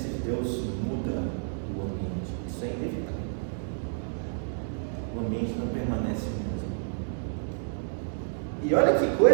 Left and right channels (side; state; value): left; silent; digital silence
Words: de Deus muda o ambiente. Isso é inevitável. O ambiente não permanece o mesmo. E olha que